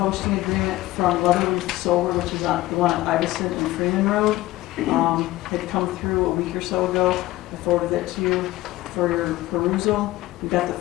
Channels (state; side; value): quieter; right; 17.3 dB